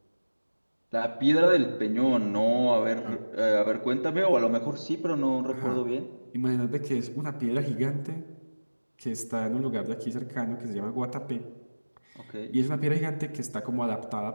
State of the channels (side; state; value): both; inverted; correlation -1.00